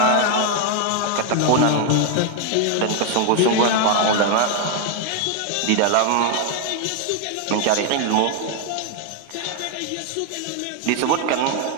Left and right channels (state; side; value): different; both; correlation 0.01